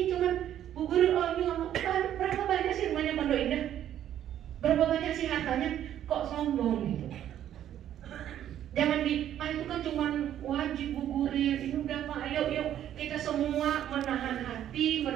cuman Bu Guru ini ngomong, berapa banyak sih rumahnya Pondok Indah? Berapa banyak sih hartanya? Kok sombong gitu? Jangan itu kan cuma wajib Bu Guru. Ini udah Pak, ayo kita semua menahan hati,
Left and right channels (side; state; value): left; quieter; 11.0 dB